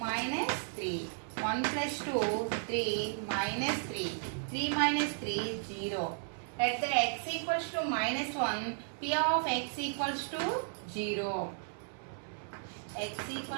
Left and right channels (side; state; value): left; silent; 55 dB below the other